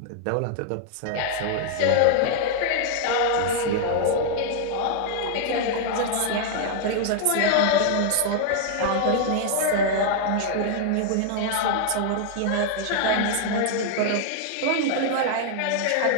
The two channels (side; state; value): both; different; correlation 0.00